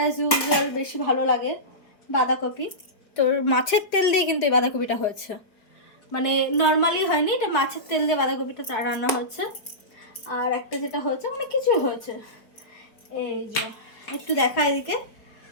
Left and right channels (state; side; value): late; right; 4.5 ms